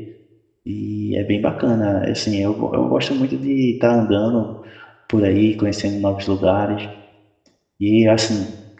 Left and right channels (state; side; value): identical; both; correlation 1.00